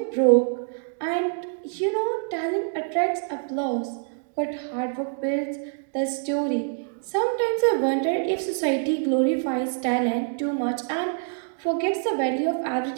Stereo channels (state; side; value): silent; left; digital silence